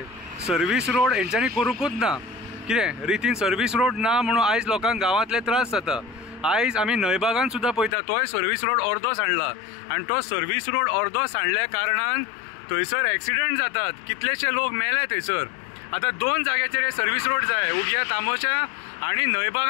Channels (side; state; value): right; drops out; at 8.0 s